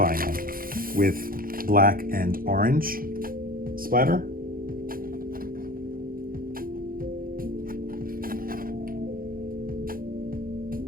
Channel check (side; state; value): left; late; 0.42 ms